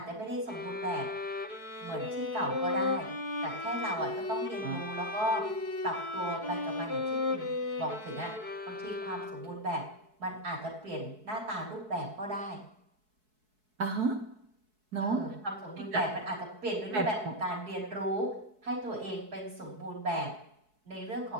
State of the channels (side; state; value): left; late; 4.7 ms